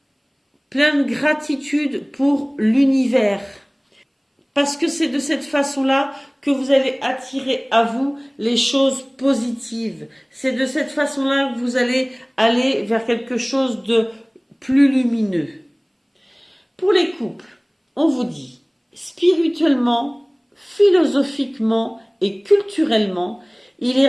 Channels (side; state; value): both; identical; correlation 1.00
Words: plein de gratitude pour l'univers. Parce que c'est de cette façon-là que vous allez attirer à vous les choses positives. C'est de cette façon-là que vous allez aller vers quelque chose de plus lumineux. Pour les couples, on vous dit, spirituellement, philosophiquement et culturellement, il